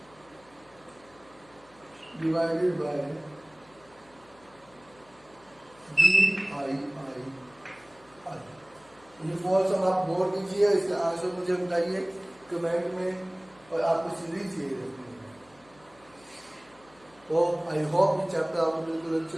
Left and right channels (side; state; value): left; noise; hum, 28 dB below the sound